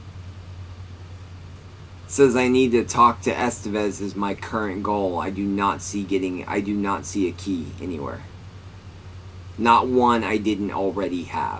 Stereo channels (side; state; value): both; identical; correlation 1.00